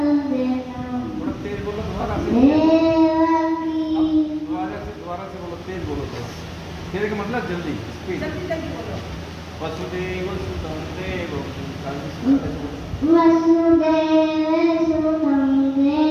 थोड़ा तेज बोलो, दोबारा से, दोबारा से बोलो, तेज बोलो थोड़ा, तेरे का मतलब जल्दी, स्पीड। जल्दी जल्दी बोलो। वसुदेव सुतं देवं वसुदेवसुतं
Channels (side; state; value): both; identical; correlation 1.00